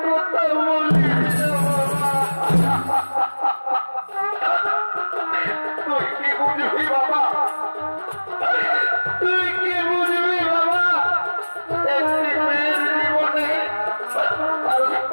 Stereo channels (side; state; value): both; inverted; correlation -1.00